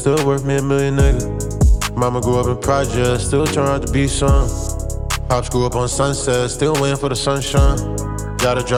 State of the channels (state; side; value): identical; both; correlation 1.00